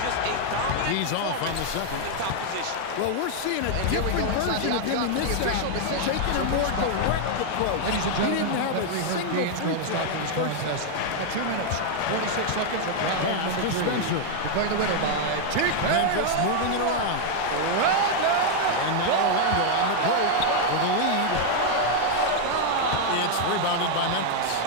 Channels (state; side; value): different; both; correlation 0.00